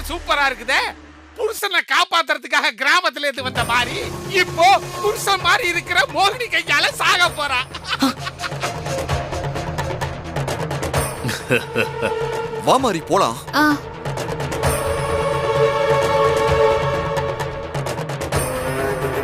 சூப்பரா இருக்குதே. புருஷனை காப்பாத்துறதுக்காக கிராமத்துல இருந்து வந்த மாதிரி இப்போ புருஷன் மாதிரி இருக்கிற மோகினி கையால சாக போறா. வா மாறி போலாம். ஆ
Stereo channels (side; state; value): both; identical; correlation 1.00